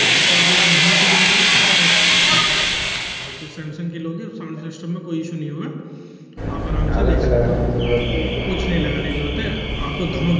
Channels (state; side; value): identical; both; correlation 1.00